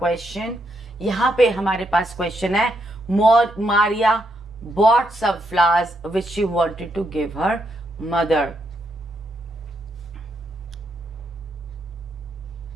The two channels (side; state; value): both; normal; correlation 0.78